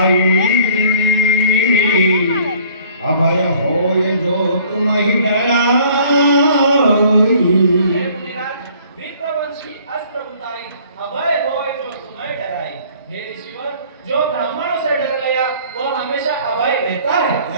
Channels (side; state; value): both; inverted; correlation -0.55